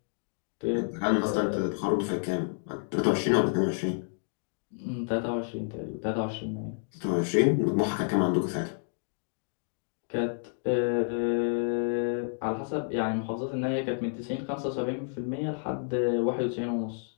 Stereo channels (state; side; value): silent; right; digital silence